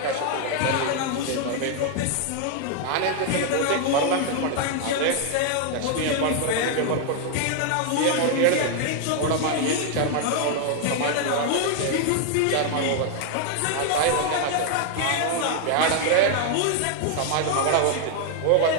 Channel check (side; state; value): both; different; correlation 0.00